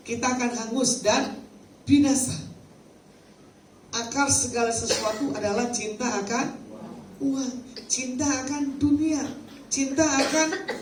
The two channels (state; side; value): identical; both; correlation 1.00